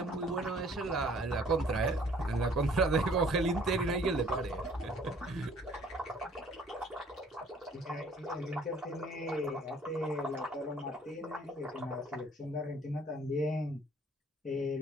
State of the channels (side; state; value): both; normal; correlation 0.56